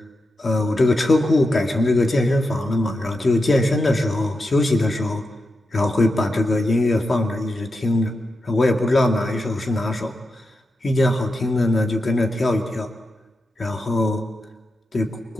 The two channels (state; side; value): normal; both; correlation 0.88